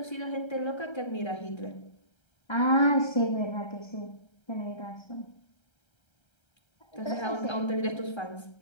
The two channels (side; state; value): right; late; 1.3 ms